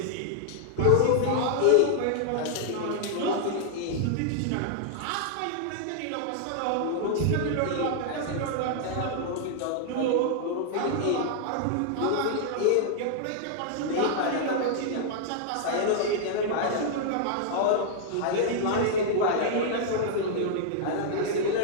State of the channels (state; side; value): different; both; correlation -0.01